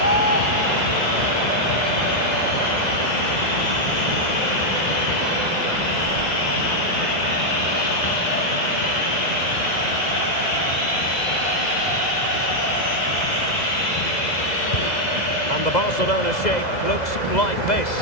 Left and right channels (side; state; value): right; late; 2.0 ms